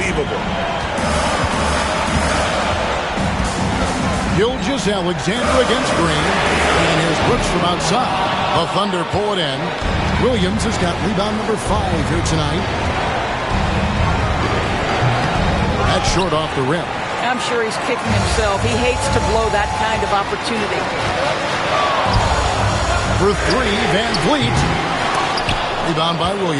Gilgeous-Alexander against Green. And here's Brooks from outside. The Thunder pull it in. Williams has got rebound number 5 here tonight. That's short off the rim. I'm sure he's kicking himself. He hates to blow that kind of opportunity. For 3, VanVleet. Rebound by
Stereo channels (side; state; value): both; identical; correlation 1.00